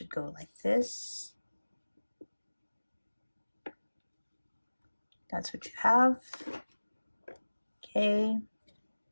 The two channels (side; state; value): both; inverted; correlation -1.00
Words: go like this. That's what you have. Okay,